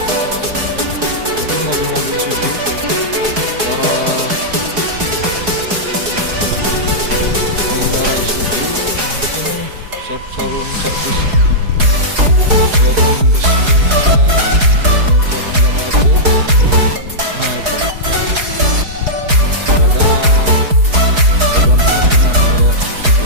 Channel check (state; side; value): late; left; 4.8 ms